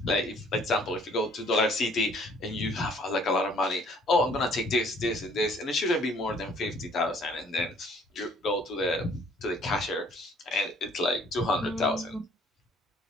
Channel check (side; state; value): both; normal; correlation 0.58